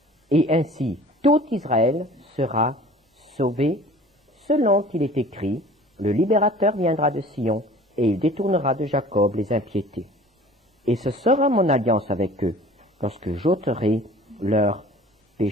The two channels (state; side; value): normal; both; correlation 0.46